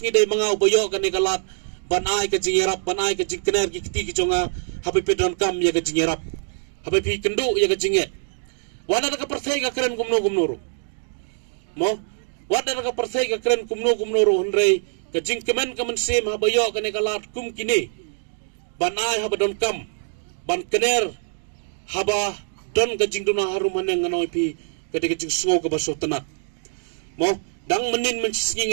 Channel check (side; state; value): left; silent; 63 dB below the other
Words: dai manga ubayo kane kalat ban ai ke jingerap ban ai ke jingkener ki kiti kejonga habi pedon kam ya ke jingerap habi pi kendu ya ke jinget wana da ka perthai ka keren gumno mo Wada ka perthai ka kren kumno ro hendrai ka jingkemen ka mensem habayo ka ne kalat kum kini banai haba don kam ban kener haba don ka jingduna harum haneng nganoi pi ka de jing sngo ka baso tenat mo dang menin